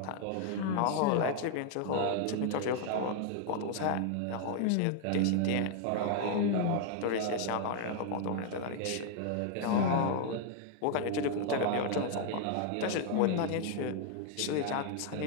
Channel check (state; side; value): different; both; correlation 0.00